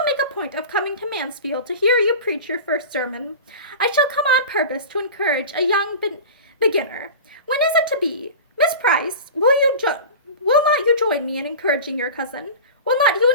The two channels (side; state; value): both; inverted; correlation -0.33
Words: make a point of coming to Mansfield to hear you preach your first sermon. I shall come on purpose to encourage a young beginner. When is it to be? Miss Price, will not you join me in encouraging your cousin? Will not you